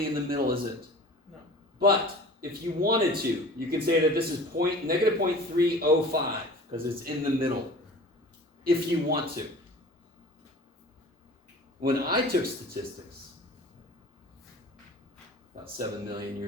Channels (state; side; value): normal; both; correlation 0.42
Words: in the middle, is it? No. But if you wanted to, you can say that this is negative 0.305 because it's in the middle. If you want to. When I took statistics, about 7 million